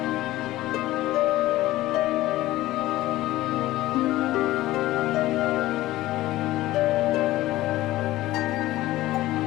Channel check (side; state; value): right; quieter; 16.5 dB